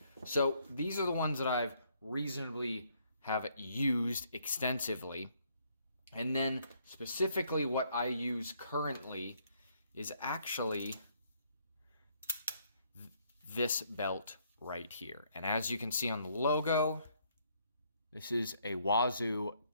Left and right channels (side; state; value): both; inverted; correlation -0.69